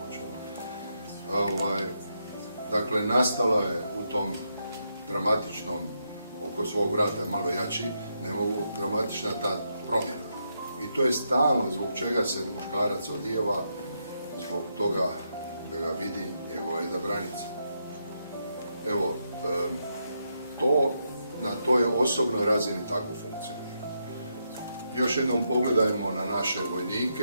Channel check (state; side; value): inverted; both; correlation -0.81